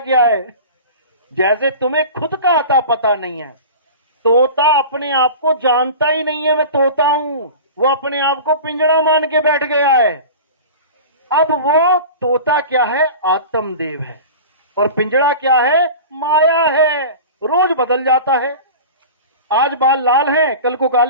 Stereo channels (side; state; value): both; inverted; correlation -0.35